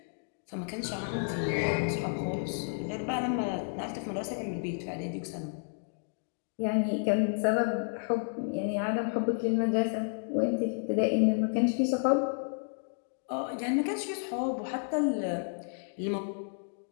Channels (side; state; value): right; silent; digital silence